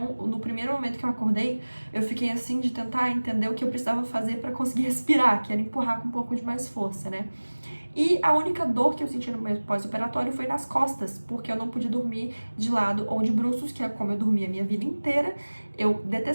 no primeiro momento que eu acordei, eu fiquei assim de tentar entender o que eu precisava fazer para conseguir respirar, que era empurrar com um pouco de mais força, né? E a única dor que eu senti no meu pós-operatório foi nas costas, porque eu não podia dormir de lado ou de bruços, que é como eu dormia a minha vida inteira. Eu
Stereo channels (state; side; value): inverted; both; correlation -1.00